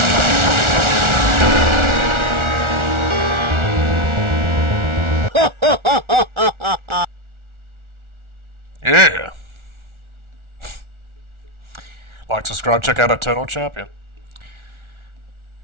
Yeah. Like, subscribe, check out Eternal Champion.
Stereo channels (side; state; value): left; late; 1.4 ms